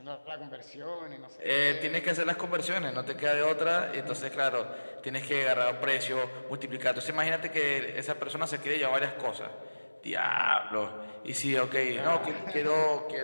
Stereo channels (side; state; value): both; inverted; correlation -1.00